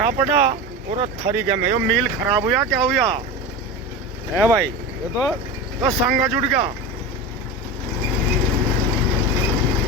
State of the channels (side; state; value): both; normal; correlation 0.26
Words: पड़ा और थरी के में। यो मील खराब हुआ क्या हुआ है भाई? ये तो संगा जुड़ गया।